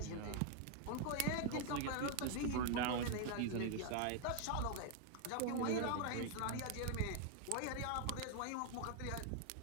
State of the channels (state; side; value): different; both; correlation 0.00